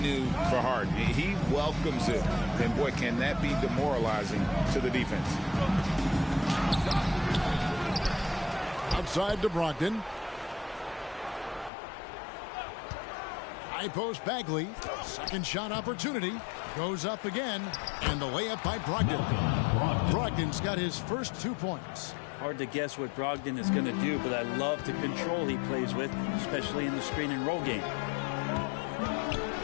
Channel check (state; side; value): drops out; right; at 11.7 s